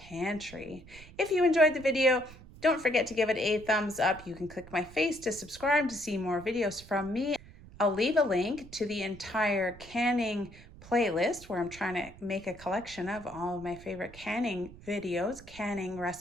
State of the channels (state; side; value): noise; right; rumble, 19 dB below the sound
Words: If you enjoyed the video, don't forget to give it a thumbs up. You can click my face to subscribe to see more videos from me. I'll leave a link to the entire canning playlist where I'm trying to make a collection of all of my favorite canning videos, canning